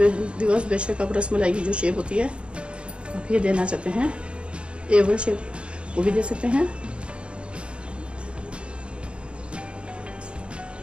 व्यूअर्स। बेशक आप रसमलाई की जो शेप होती है आप ये देना चाहते हैं, एवल शेप वो भी दे सकते हैं।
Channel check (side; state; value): left; late; 0.057 ms